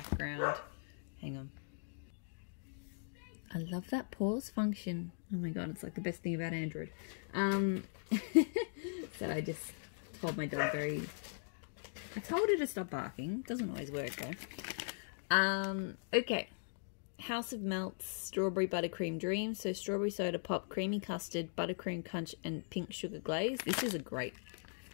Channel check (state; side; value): silent; right; digital silence